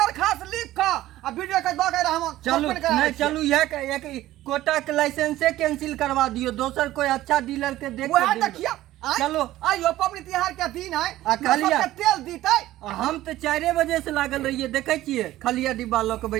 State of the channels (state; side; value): quieter; left; 15.2 dB